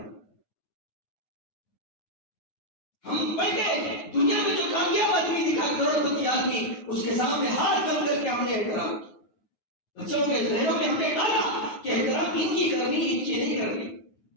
ہم پڑھ کے دنیا میں جو کامیاب آدمی دکھا، کروڑ پتی آدمی، اس کے سامنے ہاتھ بند کر کے ہم نے احترام کیا. بچوں کے ذہنوں میں ہم نے ڈالا کہ احترام ان کی کرنی، ان کی نہیں کرنی.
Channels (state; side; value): late; right; 9.4 ms